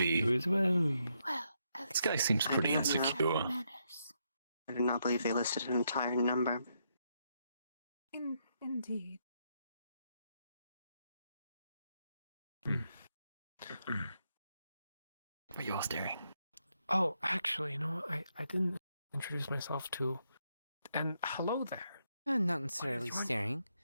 You as well. This guy seems pretty insecure. I do not believe they listed an entire number. Indeed. But you're staring. Oh, actually, I didn't introduce myself to. And hello there. Not necessarily staring.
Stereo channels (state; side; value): inverted; both; correlation -0.79